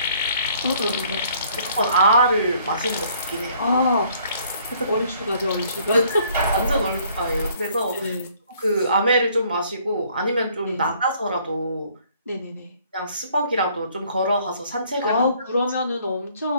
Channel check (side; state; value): both; inverted; correlation -0.61